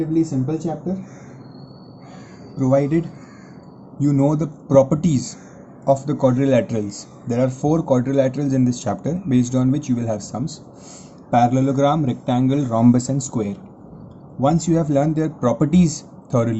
simple chapter, provided you know the properties of the quadrilaterals. There are 4 quadrilaterals in this chapter based on which you will have sums: parallelogram, rectangle, rhombus and square. Once you have learned their properties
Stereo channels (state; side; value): identical; both; correlation 1.00